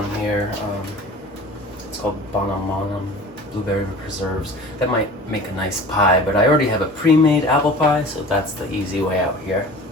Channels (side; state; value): both; normal; correlation 0.40